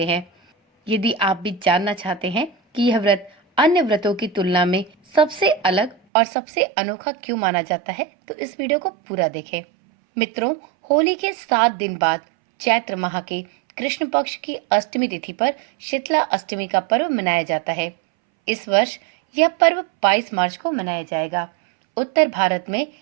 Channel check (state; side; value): drops out; left; at 6.0 s